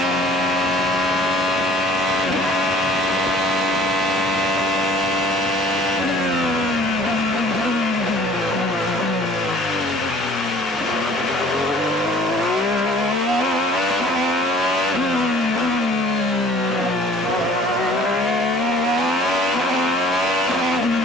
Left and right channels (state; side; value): normal; both; correlation 0.52